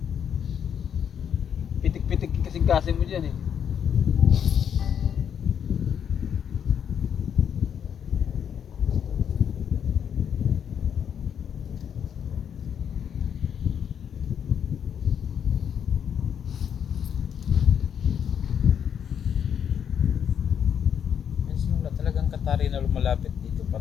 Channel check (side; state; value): right; quieter; 8.3 dB